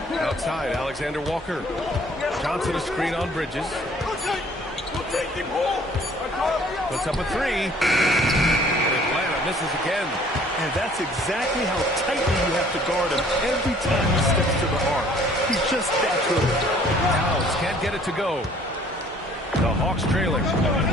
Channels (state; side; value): normal; both; correlation 0.56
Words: Outside, Alexander Walker. Johnson a screen on Bridges. Puts up a 3. And Atlanta misses again. And that's exactly how tightly you have to guard him every time he steps to the arc. He's just that good. Towns can't get it to go. The Hawks trailing.